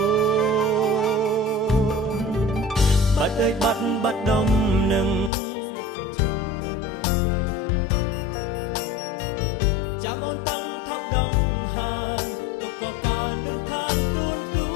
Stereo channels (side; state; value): right; drops out; at 5.3 s